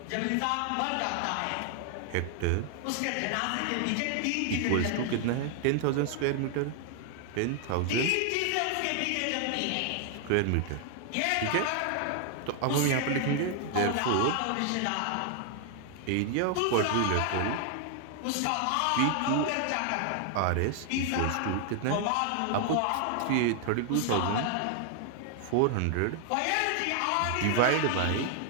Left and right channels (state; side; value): different; both; correlation 0.00